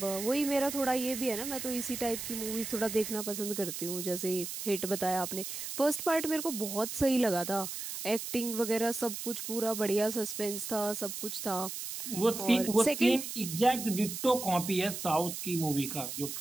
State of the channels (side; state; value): right; noise; hiss, 6 dB below the sound